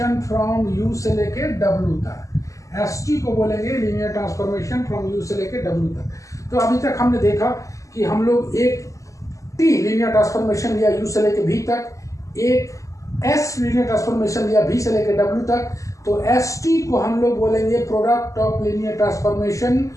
from U से लेके W तक। ST को बोलेंगे लीनियर ट्रांसफॉर्मेशन फ्रॉम U से लेके W तक। तो अभी तक हमने देखा कि हम लोग एक T लीनियर ट्रांसफॉर्मेशन लिया U से लेके V तक, एक S लीनियर ट्रांसफॉर्मेशन लिया V से लेके W तक। तो ST को हम लोग बोलेंगे product of linear transformation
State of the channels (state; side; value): late; right; 0.16 ms